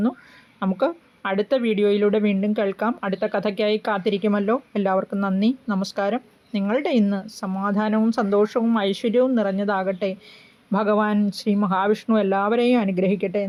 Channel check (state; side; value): identical; both; correlation 1.00